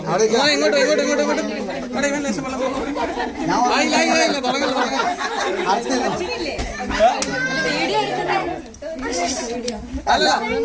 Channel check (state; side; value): identical; both; correlation 1.00